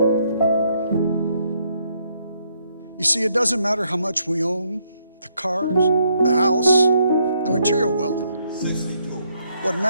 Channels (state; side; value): inverted; both; correlation -0.73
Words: You see, it doesn't matter how much we own, the cars, the house, the material wealth. What